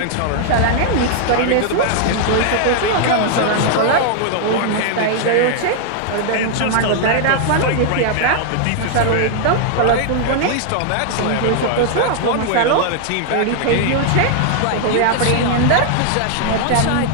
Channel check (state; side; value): different; both; correlation 0.00